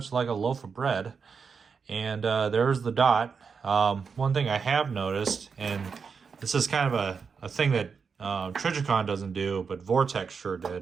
like a loaf of bread. And there's the dot. One thing I have noticed, and this is kind of a thing that Trijicon doesn't do, but Vortex sure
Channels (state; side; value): quieter; left; 5.7 dB